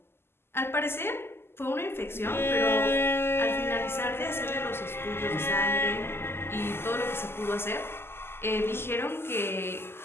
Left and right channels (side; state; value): right; late; 0.12 ms